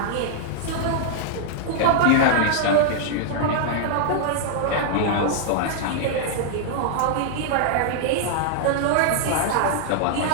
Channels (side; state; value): both; different; correlation -0.01